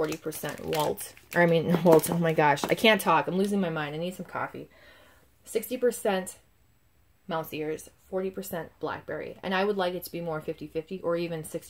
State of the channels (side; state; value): both; identical; correlation 1.00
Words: Walt. Or, I mean, Walt, oh my gosh. I can't talk. I'm losing my mind. I need some coffee. 60% mouse ears, 40% blackberry. And I would like it to be more 50-50, or even